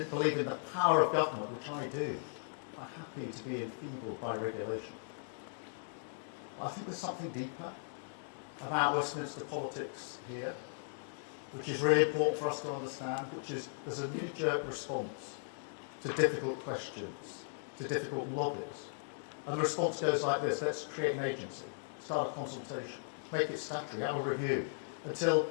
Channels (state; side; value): silent; right; digital silence